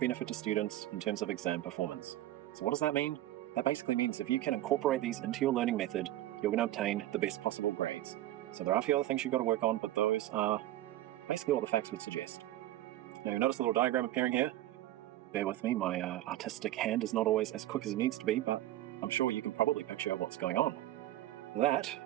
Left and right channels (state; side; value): quieter; left; 14.4 dB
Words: to students in terms of exam performance. So what does that mean? That basically means if you can incorporate these into your learning method, you're going to obtain the best possible grades. So there are a few other things you've got to work on, but those are basically what the facts would suggest. Now you notice a little diagram appearing here. Bear with me, my artistic hand is not always as quick as it needs to be, but I'm sure you can probably picture what's going on. That